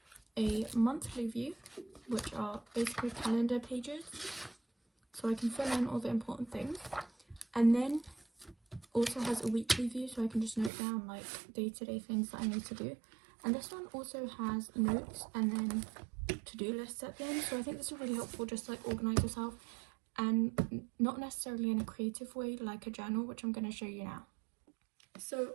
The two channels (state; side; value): drops out; left; at 10.7 s